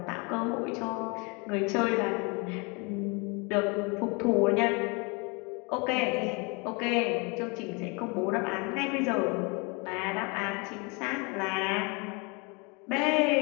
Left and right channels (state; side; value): quieter; right; 30.5 dB